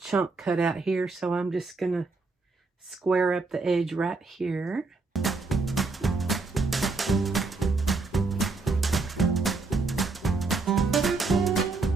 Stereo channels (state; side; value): quieter; left; 3.9 dB